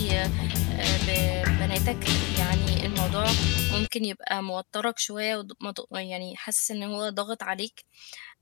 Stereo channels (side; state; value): right; quieter; 25.9 dB